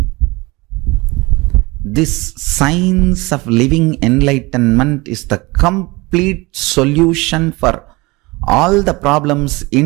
this science of living enlightenment is the complete solution for all the problems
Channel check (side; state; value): left; quieter; 23.7 dB